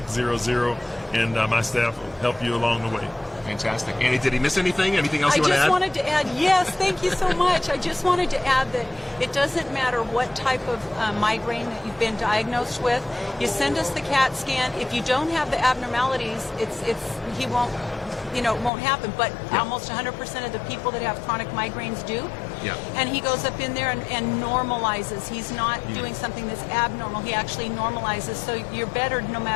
and my staff will help you along the way. Fantastic. Annie, did he miss anything? Anything else you want to add? I just wanted to add, yes, thank you so much. I just wanted to add that it doesn't matter what type of migraine that you've been diagnosed with. You send us the CAT scan. If you don't have the abnormalities, it won't happen. But almost 100% of the people that have chronic migraines do. Yeah. And he goes up in there and normalizes. He's not doing something that's abnormal. He actually normalizes. So you're better no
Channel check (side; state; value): right; drops out; at 18.7 s